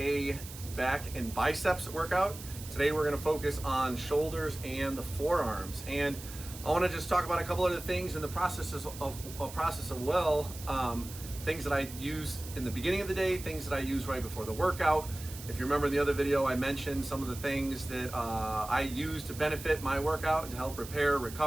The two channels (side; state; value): right; noise; hiss, 14 dB below the sound